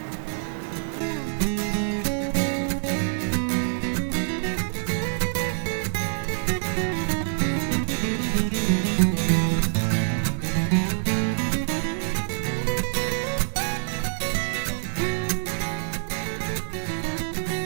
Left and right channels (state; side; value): silent; left; digital silence